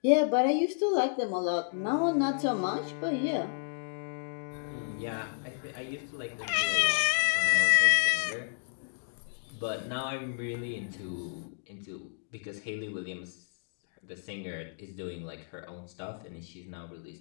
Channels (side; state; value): right; silent; digital silence